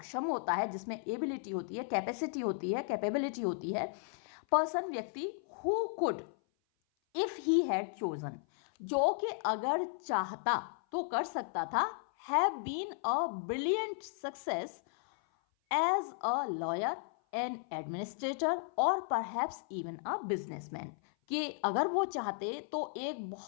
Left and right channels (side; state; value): right; silent; 54 dB below the other